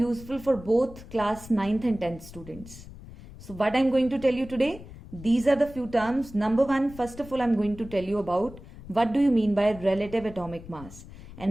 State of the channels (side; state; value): left; noise; rumble, 16 dB below the sound